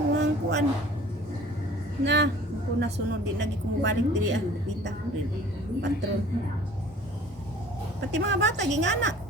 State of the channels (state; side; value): normal; both; correlation 0.49